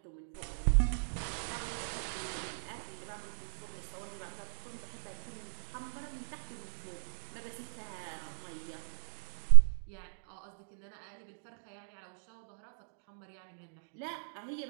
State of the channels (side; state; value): left; silent; digital silence